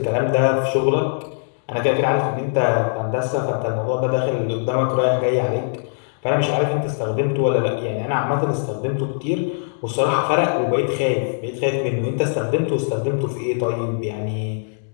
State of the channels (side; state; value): right; silent; digital silence